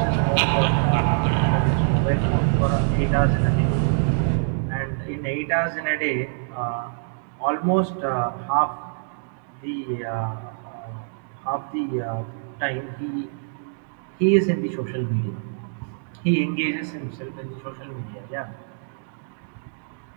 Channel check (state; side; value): silent; left; digital silence